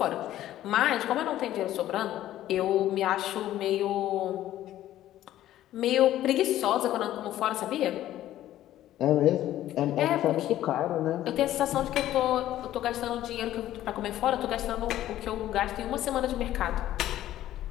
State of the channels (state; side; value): quieter; right; 13.3 dB